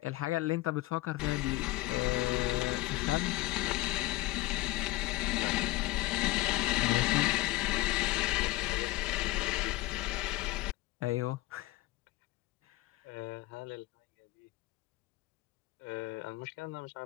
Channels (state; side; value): quieter; right; 19.5 dB